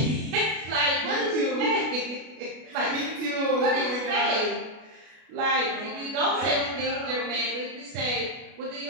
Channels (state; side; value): late; left; 33 ms